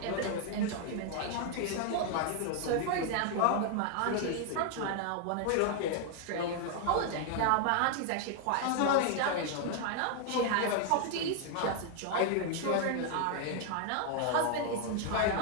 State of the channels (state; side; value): different; both; correlation 0.00